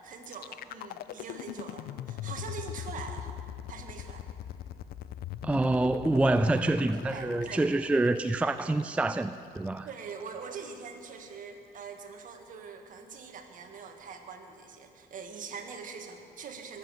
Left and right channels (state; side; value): normal; both; correlation 0.84